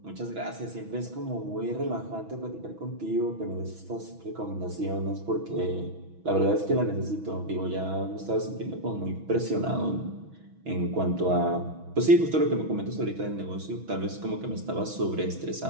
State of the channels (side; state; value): left; late; 6.1 ms